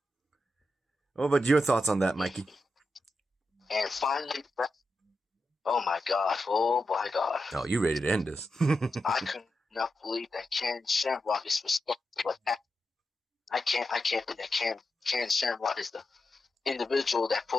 What about your thoughts on that, Mikey? And finally, oh my god. Oh, you ready to end this? I could not believe that Ken Shamrock is responsible for that. I can't believe that Ken Shamrock is the individual that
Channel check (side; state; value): both; normal; correlation 0.88